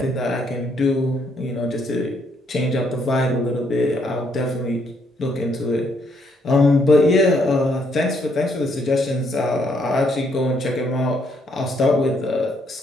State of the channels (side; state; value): both; normal; correlation 0.72